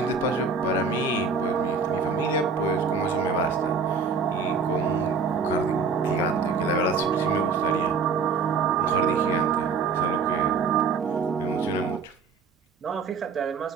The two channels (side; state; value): left; quieter; 4.9 dB